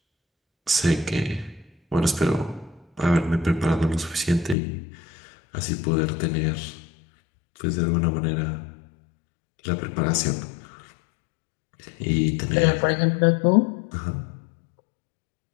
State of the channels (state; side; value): drops out; right; at 4.5 s